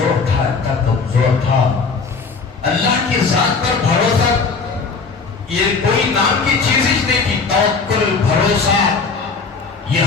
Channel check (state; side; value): quieter; right; 4.7 dB